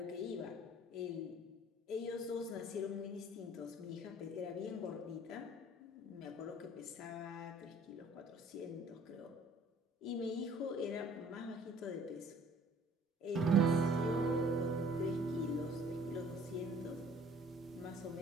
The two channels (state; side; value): normal; both; correlation 0.54